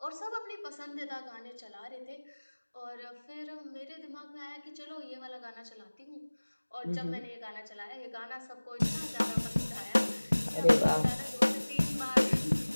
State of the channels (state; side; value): inverted; both; correlation -1.00